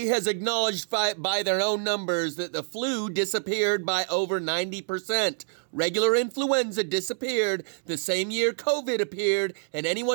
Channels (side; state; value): left; silent; digital silence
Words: has acknowledged by their own numbers that the flu disappeared by over 90%. Regular influenza disappeared the same year COVID appeared, and